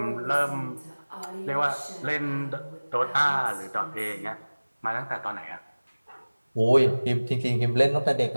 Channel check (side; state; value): both; inverted; correlation -1.00